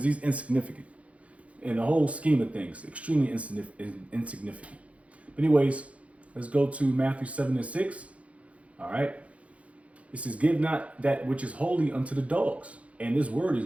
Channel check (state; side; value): late; left; 0.064 ms